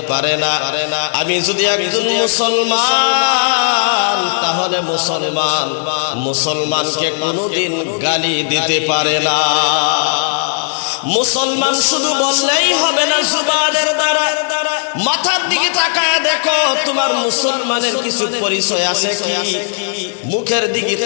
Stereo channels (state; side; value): silent; right; digital silence